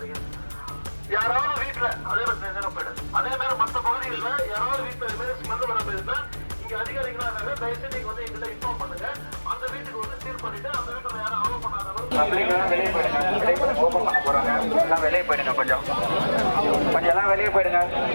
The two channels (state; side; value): inverted; both; correlation -1.00